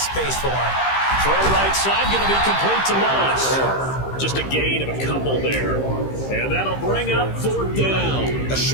space for him. Throw right side, going to be complete to Moss. Just a gain of a couple there. And that'll bring up 4th down. A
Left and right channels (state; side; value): late; right; 15 ms